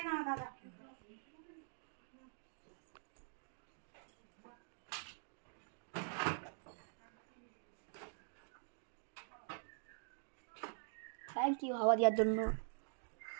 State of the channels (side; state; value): left; silent; digital silence